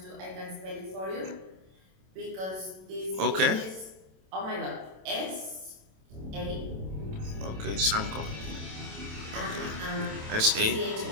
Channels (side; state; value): left; late; 27 ms